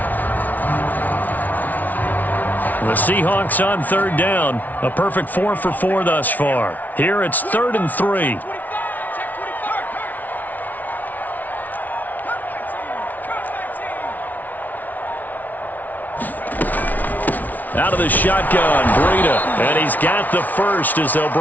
The Seahawks on 3rd down. A perfect 4 for 4 thus far. Here it's 3rd and 3. Out of the shotgun, Breida. And he's got the first as they'll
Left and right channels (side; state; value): right; late; 0.078 ms